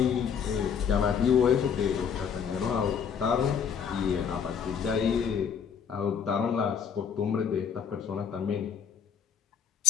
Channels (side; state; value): right; quieter; 7.3 dB